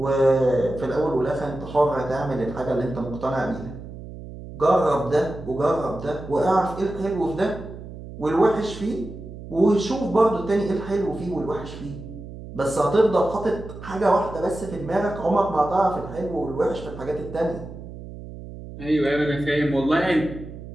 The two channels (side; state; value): right; noise; hum, 13 dB below the sound